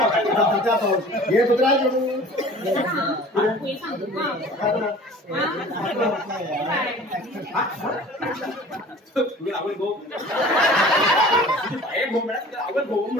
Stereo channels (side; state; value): both; normal; correlation 0.44